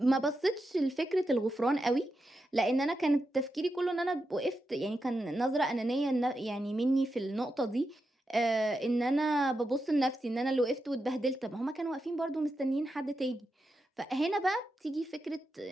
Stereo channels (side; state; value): both; normal; correlation 0.87